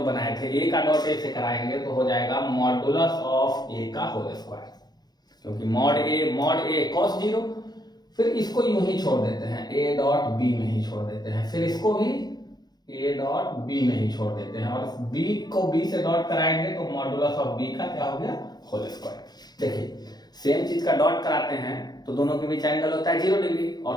बनाए थे। ए का डॉट ए से कराएंगे तो हो जाएगा मॉडुलस ऑफ ए का होल स्क्वायर, क्योंकि मॉड ए cos 0, फिर इसको यूं ही छोड़ देते हैं, ए डॉट बी में ही छोड़ देते हैं, फिर इसको भी ए डॉट बी में ही छोड़ देते हैं, और बी को बी से डॉट कराएंगे तो मॉडुलस ऑफ बी का क्या हो गया, होल स्क्वायर। देखिए सेम चीज का डॉट कराते हैं तो दोनों के बीच एंगल होता है 0 डिग्री,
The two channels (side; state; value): right; late; 0.19 ms